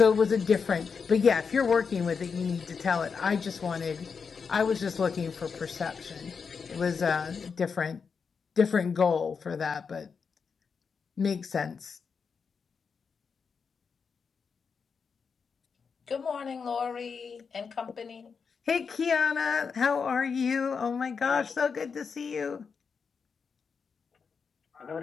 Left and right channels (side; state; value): right; quieter; 5.7 dB